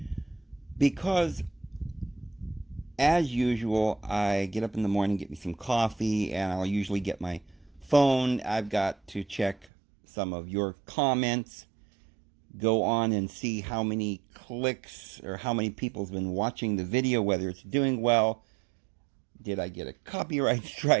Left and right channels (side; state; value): left; drops out; at 9.7 s